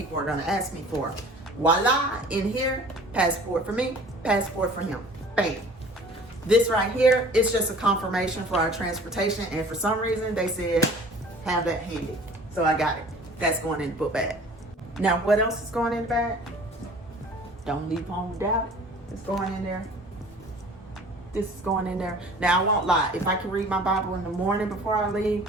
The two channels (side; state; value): both; normal; correlation 0.47